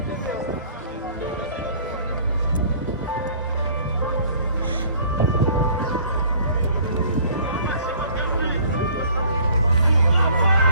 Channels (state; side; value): inverted; both; correlation -0.53